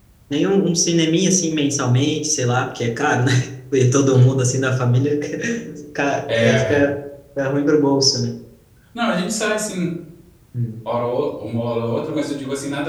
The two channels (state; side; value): identical; both; correlation 1.00